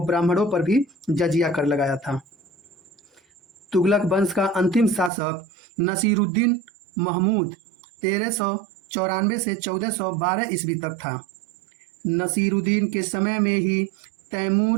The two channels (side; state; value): left; drops out; at 5.1 s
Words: ब्राह्मणों पर भी जजिया कर लगाया था। तुगलक वंश का अंतिम शासक नसीरुद्दीन महमूद 1394 से 1412 ईस्वी तक था। नसीरुद्दीन के समय में ही